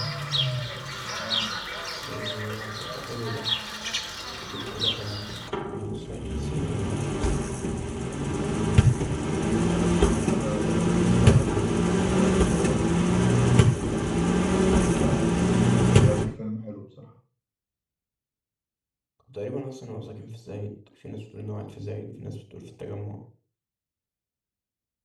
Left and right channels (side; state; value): both; identical; correlation 1.00